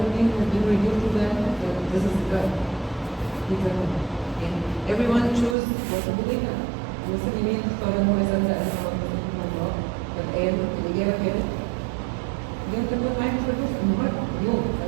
think has been revealed to them that this is God. And everyone chose what to believe in. المسلمين اختاروا انه يصدق انه ربنا الله فالآن الإجابة كانت اليوم تكون معاك في الفلوس النهارده اليوم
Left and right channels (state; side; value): drops out; left; at 5.6 s